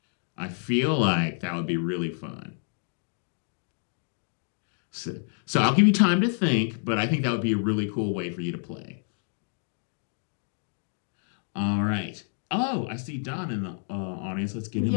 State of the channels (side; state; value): right; silent; 59 dB below the other